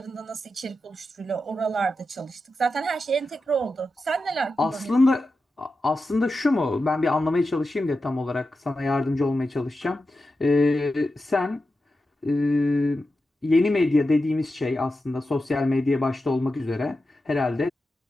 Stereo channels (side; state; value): both; normal; correlation 0.90